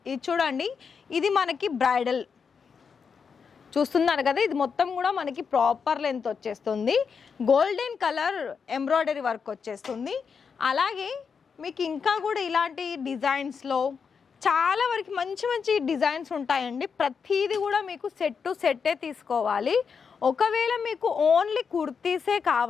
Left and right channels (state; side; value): quieter; right; 6.0 dB